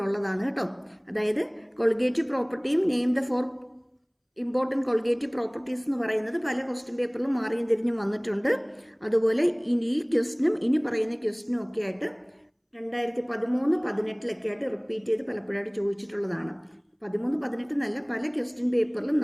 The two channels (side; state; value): both; identical; correlation 1.00